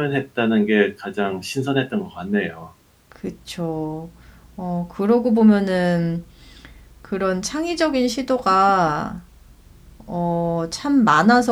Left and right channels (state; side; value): identical; both; correlation 1.00